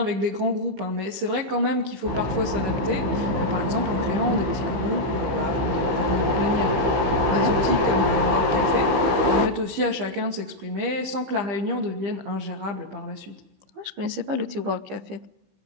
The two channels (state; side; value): late; left; 15 ms